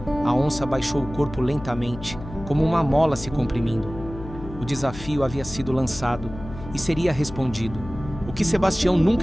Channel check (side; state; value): left; noise; hum, 13 dB below the sound